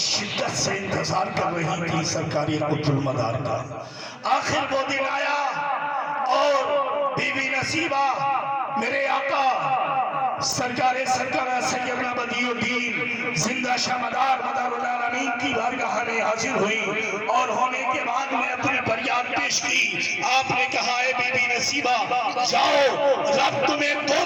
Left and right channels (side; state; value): both; identical; correlation 1.00